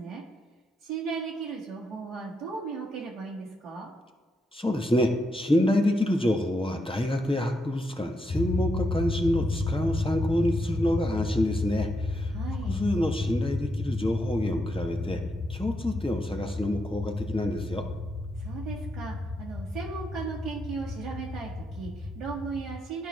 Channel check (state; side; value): normal; both; correlation 0.81